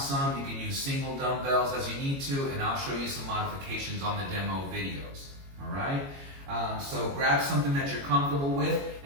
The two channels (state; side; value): late; left; 22 ms